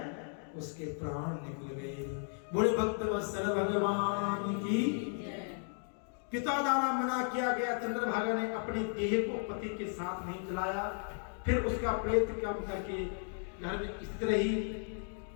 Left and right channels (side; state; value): right; silent; 54 dB below the other